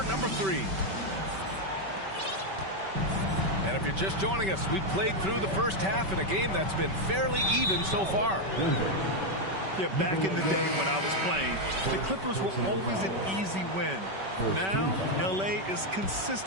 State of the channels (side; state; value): left; late; 5.2 ms